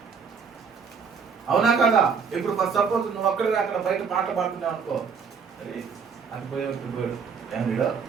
అవునా కదా? ఇప్పుడు సపోజ్ నువ్వు అక్కడ బయట పాట పాడుతున్నావు అనుకో, అరే అది పోయాడు ఏం వీడో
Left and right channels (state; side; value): quieter; left; 6.0 dB